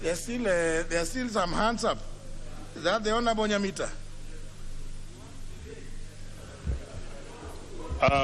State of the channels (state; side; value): identical; both; correlation 1.00